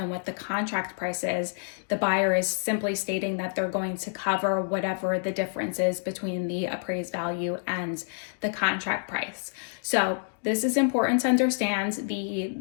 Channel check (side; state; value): right; silent; digital silence